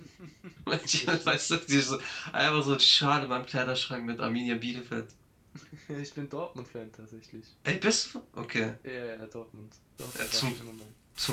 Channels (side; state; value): both; identical; correlation 1.00